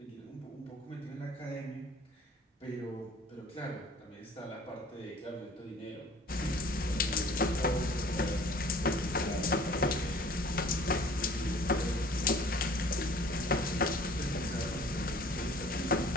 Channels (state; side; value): normal; both; correlation 0.50